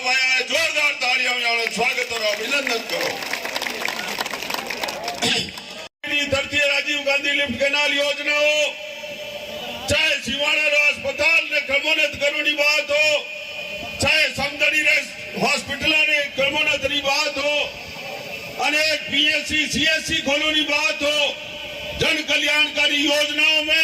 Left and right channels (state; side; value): identical; both; correlation 1.00